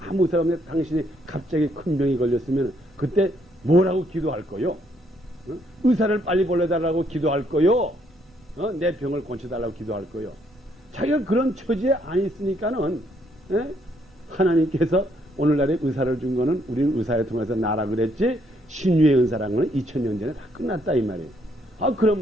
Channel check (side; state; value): both; normal; correlation 0.71